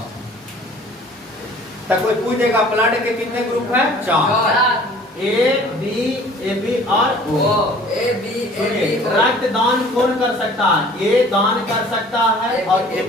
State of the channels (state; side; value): normal; both; correlation 0.51